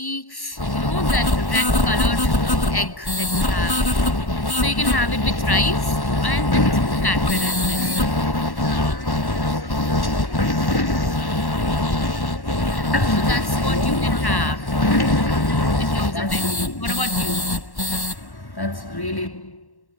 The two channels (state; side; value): late; right; 1.1 ms